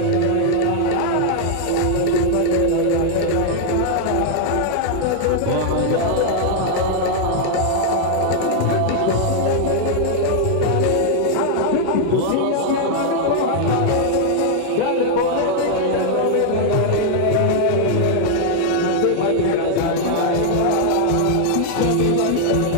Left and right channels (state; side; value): different; both; correlation 0.00